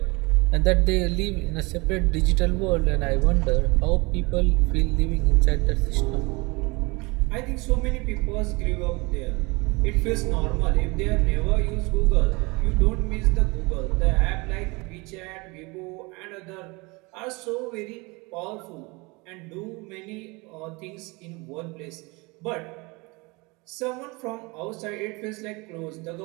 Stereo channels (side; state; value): left; quieter; 26.2 dB